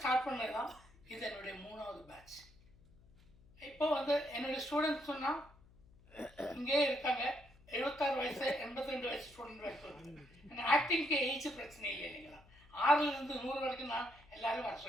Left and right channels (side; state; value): left; noise; hum, 26 dB below the sound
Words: ஸ்டார்ட் பண்ணது தான் இது என்னுடைய 3வது பேட்ச். இப்போ வந்து என்னுடைய ஸ்டூடெண்ட்ஸ் சொன்னால் இங்கே இருக்காங்க, 76 வயசு 82 வயசு ஸ்டூடெண்ட் வரைக்கும். ஏன்னா ஆக்டிங்க்கு ஏஜ் பிரச்சனை இல்லை இல்லைங்களா? 6லேருந்து 100 வரைக்கும் நான் எல்லோரும் வர